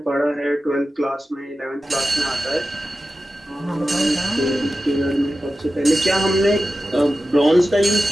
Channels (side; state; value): both; normal; correlation 0.93